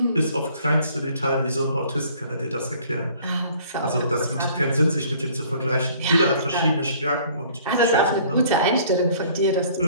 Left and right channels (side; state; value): both; inverted; correlation -0.55